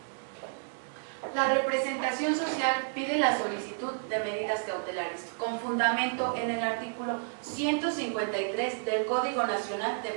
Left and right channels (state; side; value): silent; left; digital silence